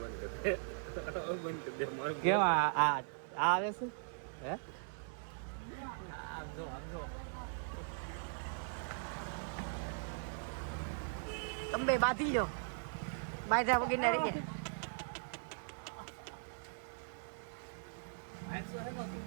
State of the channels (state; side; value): silent; left; digital silence